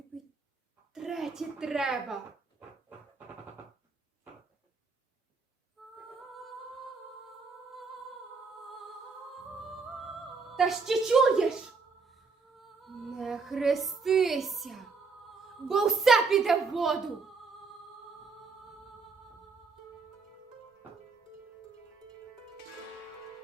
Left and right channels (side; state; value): left; quieter; 4.7 dB